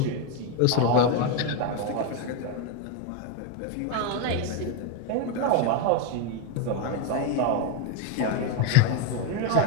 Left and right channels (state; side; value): different; both; correlation 0.02